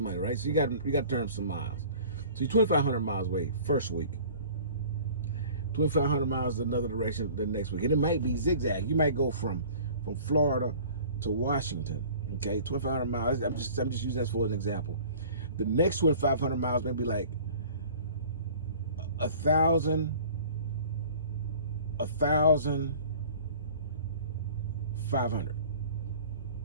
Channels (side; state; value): both; inverted; correlation -0.46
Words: money, right? So you gotta turn some miles. So you're 2,500 miles away first week. 2,500 miles another direction the next week, and it might be zigzag. You might go from Florida to Washington. Okay, 2,500 miles. I'm just using that for an example. The next 2,500 miles may be like 1,500.